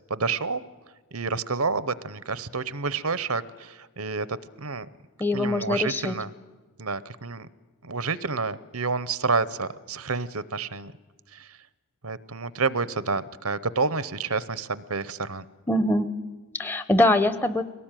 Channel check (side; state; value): both; normal; correlation 0.17